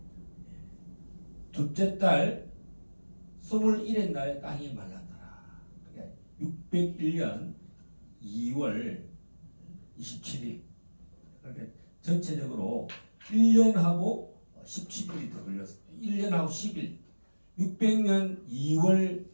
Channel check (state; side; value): inverted; both; correlation -1.00